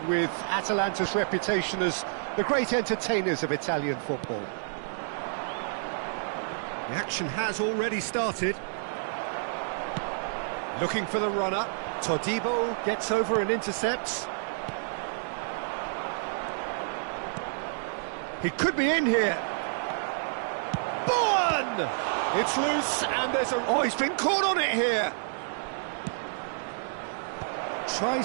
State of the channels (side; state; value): left; silent; digital silence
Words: with Atalanta's reputation as the great entertainers of Italian football. The action has already started. Looking for the runner. Todibo gets over and intercepts. He could be in here. Bowen! It's loose, and there's a... Oh, he's been caught on it here.